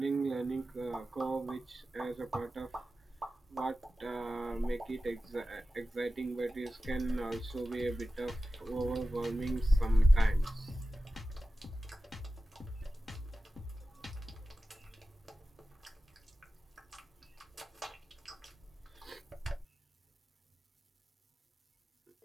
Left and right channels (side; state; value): both; normal; correlation 0.94